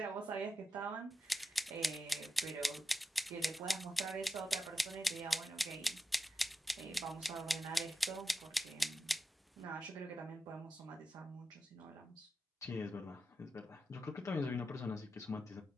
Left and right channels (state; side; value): normal; both; correlation 0.89